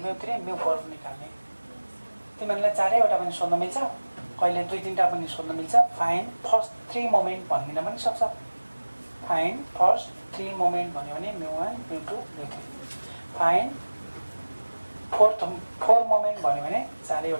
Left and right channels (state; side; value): inverted; both; correlation -1.00